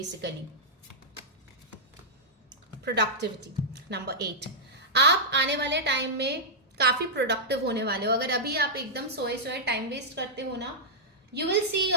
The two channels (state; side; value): normal; both; correlation -0.09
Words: Productivity number 8. आप आने वाले टाइम में काफी प्रोडक्टिव होने वाले हो. अगर अभी आप एकदम सोए टाइम वेस्ट करते हो ना, you will see